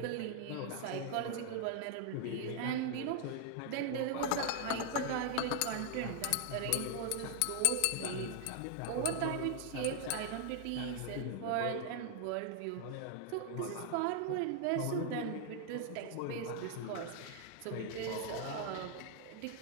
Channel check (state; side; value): different; both; correlation 0.00